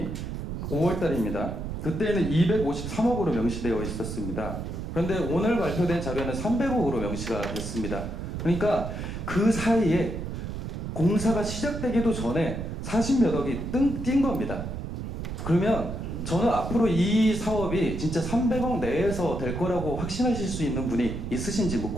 5월 달입니다. 그때는 253억으로 명시되어 있었습니다. 그런데 오늘 발표된 자료는 300억으로 명시가 됐습니다. 그러니까 그 사이에 공사가 시작되기도 전에 40몇 억이 뛴 겁니다. 그러면 저는 앞으로 이 사업이 진짜 300억 내에서 될 거라고 확신하실 수 있는 분이 있으신지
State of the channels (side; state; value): right; noise; rumble, 6 dB below the sound